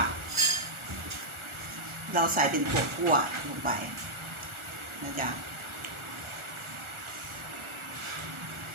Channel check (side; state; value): left; late; 1.4 ms